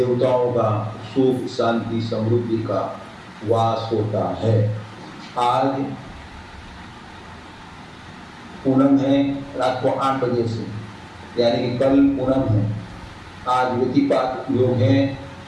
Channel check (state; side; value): identical; both; correlation 1.00